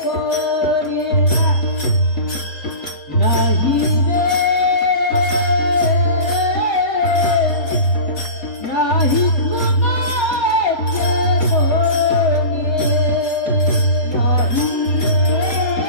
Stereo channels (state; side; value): late; right; 3.2 ms